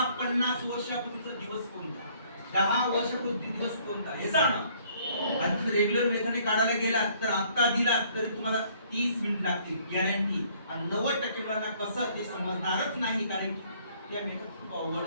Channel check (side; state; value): both; inverted; correlation -0.61